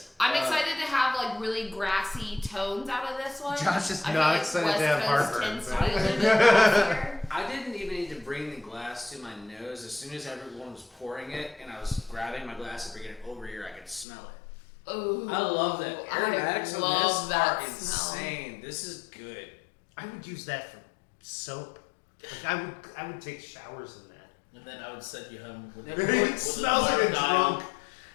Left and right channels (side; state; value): right; drops out; at 14.1 s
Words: I'm excited to have like really grassy tones out of this one. Josh is I feel not like excited West to have Coast heartburn. tends to but- be a little bit grassier. I didn't even need to bring the glass to my nose. As soon as everyone was pouring it and I was grabbing my glass and bringing it over here, I could smell it. Ooh, I love that. Aromatics I on love this that are smell. insane. This is good. I would use that for soap. Like I would take showers in that. And then I would send you home with It smells like a drunk.